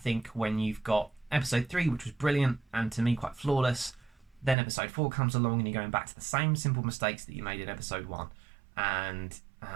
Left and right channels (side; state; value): left; drops out; at 4.5 s